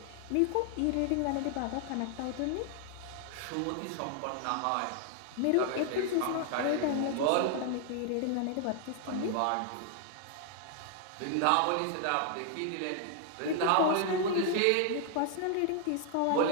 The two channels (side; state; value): both; different; correlation 0.00